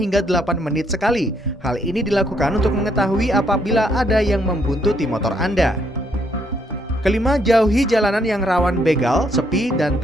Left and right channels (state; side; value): normal; both; correlation 0.71